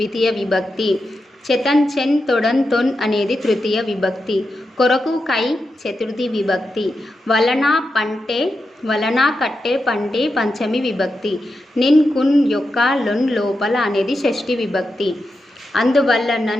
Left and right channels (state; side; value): normal; both; correlation 0.88